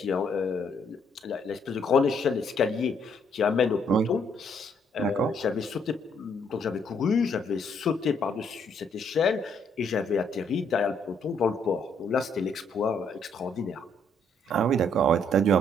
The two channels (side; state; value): both; normal; correlation 0.69